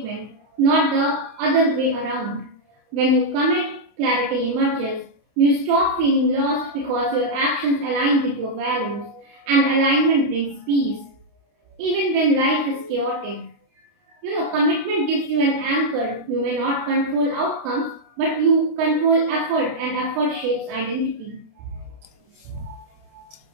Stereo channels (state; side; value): late; left; 29 ms